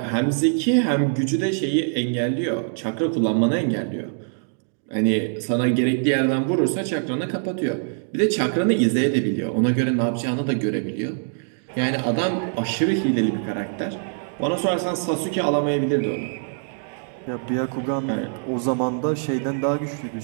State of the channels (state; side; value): silent; left; digital silence